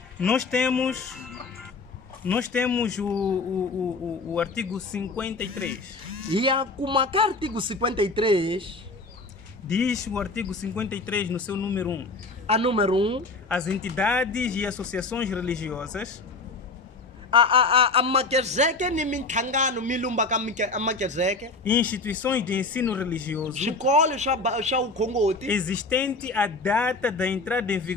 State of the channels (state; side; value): quieter; right; 3.6 dB